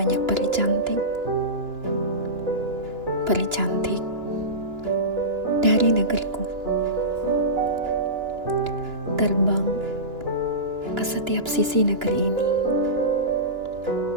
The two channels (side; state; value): left; late; 2.9 ms